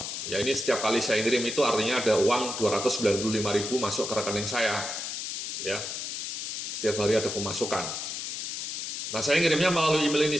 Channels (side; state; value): left; noise; hiss, 5 dB below the sound